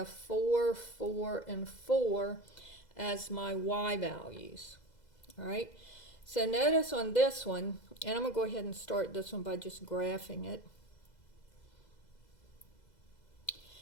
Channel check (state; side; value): late; right; 2.0 ms